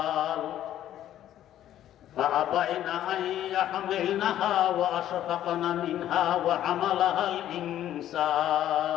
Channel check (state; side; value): quieter; right; 11.9 dB